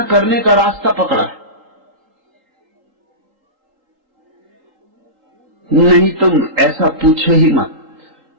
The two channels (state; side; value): late; left; 3.8 ms